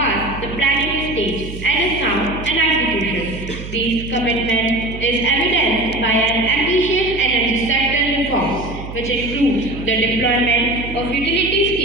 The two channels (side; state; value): right; noise; hum, 10 dB below the sound